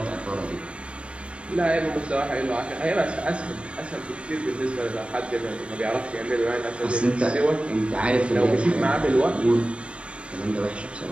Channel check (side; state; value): left; late; 0.059 ms